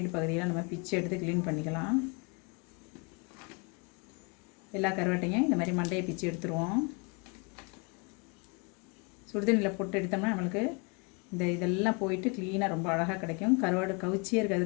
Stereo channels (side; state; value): right; quieter; 32.0 dB